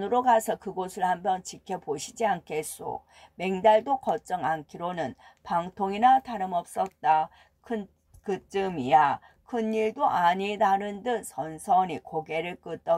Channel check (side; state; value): both; identical; correlation 1.00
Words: 가서 그곳을 한번 지켜보시지 않겠소. 맹달도 걱정 않기로는 방통이나 다름없었다. 그쯤이야 큰일도 아니다는 듯 선선히 고개를